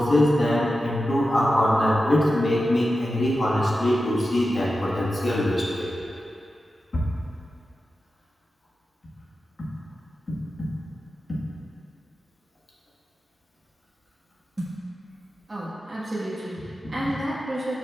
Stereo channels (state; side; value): normal; both; correlation 0.92